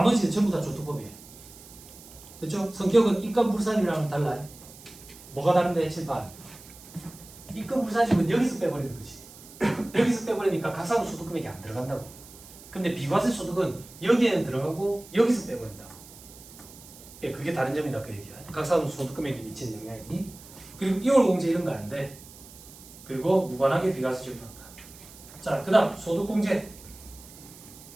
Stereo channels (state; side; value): noise; right; hiss, 19 dB below the sound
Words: 전부 다 조투법이에요. 됐죠? 성격은 입금불산이랑은 달라요. 뭐가 다른데? 칠판. 입금불산이면 여기서 빼버리는 거지. 여기서 빼버리니까 각사무 소득 금액이 안 들어간다고. 근데 비과세 소득은 여기에는 들어가고 여기서 빼버린다고. 예, 그게 다른 점이다 그 얘기야. 각사무 소득 금액에 미치는 영향이. 그리고 2월 공제 이런 거 안 돼. 그리고 무관하게 비과세 적용한다. 자, 그다음 소득공제.